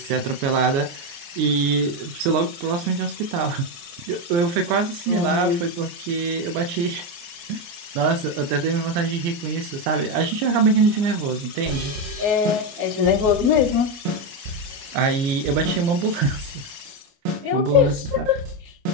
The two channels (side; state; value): left; late; 29 ms